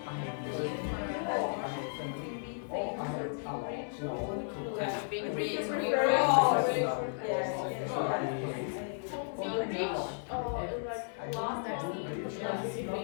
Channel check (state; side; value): silent; right; digital silence